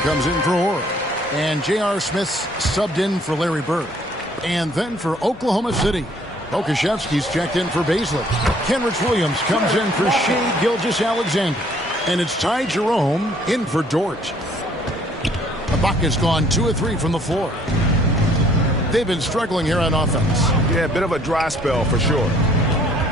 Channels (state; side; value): normal; both; correlation 0.60